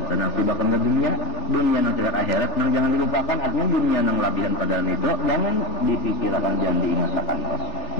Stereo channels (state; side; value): late; right; 3.6 ms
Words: nasibaka minad dunya. Dunia nang tingkat akhirat nang jangan dilupakan. Artinya dunia nang labihan pada itu jangan dipikirkan, jangan diingatkan.